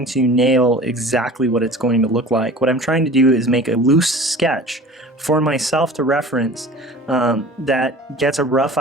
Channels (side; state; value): both; normal; correlation 0.42